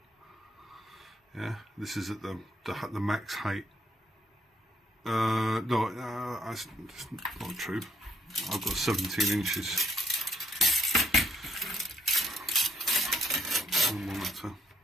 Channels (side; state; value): both; normal; correlation 0.70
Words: Yeah, this is at the max height. No, that's not true. I've got 17 inches.